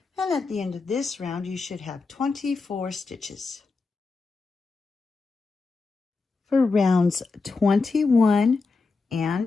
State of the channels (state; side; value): quieter; right; 4.1 dB